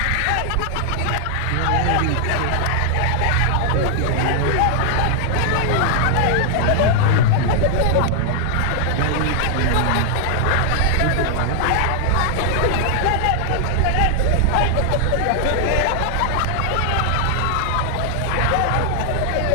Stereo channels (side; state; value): both; different; correlation 0.00